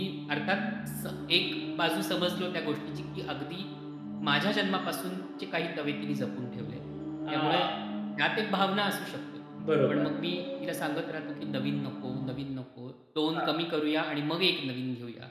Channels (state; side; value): identical; both; correlation 1.00